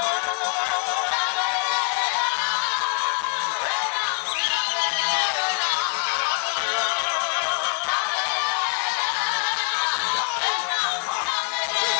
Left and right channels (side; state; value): right; quieter; 37.4 dB